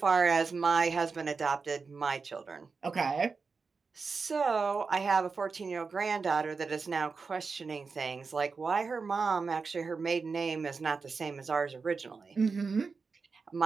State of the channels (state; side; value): quieter; left; 4.8 dB